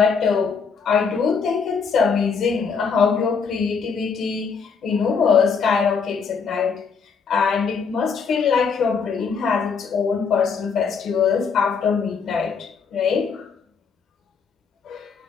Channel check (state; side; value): quieter; right; 5.7 dB